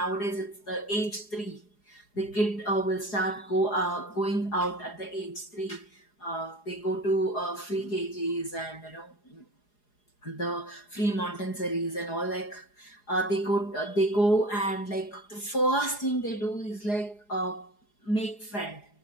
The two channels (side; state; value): right; late; 4.8 ms